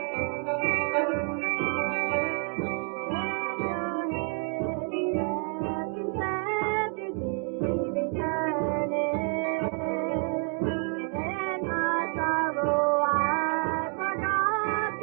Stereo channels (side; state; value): left; quieter; 36.5 dB